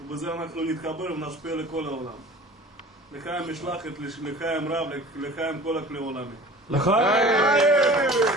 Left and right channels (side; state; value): both; normal; correlation 0.41